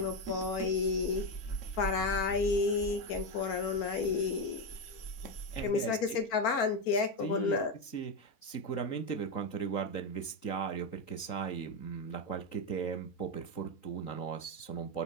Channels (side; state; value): right; late; 3.9 ms